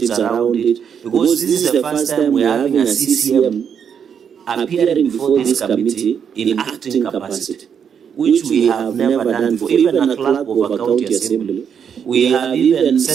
around it, because this is the first time we are having a CCM appearing before this committee in acting capacity, which we have never done before. Even a clerk of a county assembly, we have even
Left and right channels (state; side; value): quieter; left; 7.6 dB